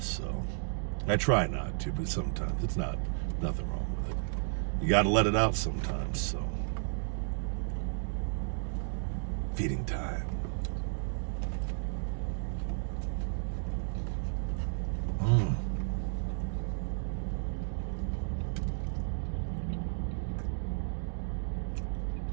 so I try not to, but sometimes it's nothing wrong with it. You got to let it out sometimes. So feeding time.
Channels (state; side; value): silent; left; digital silence